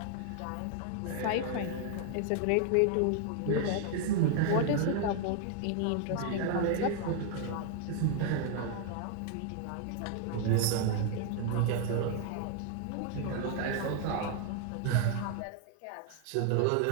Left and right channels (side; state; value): both; different; correlation 0.00